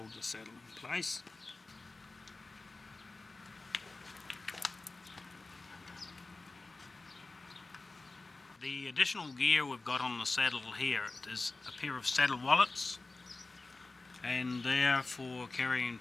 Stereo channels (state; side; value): quieter; right; 3.4 dB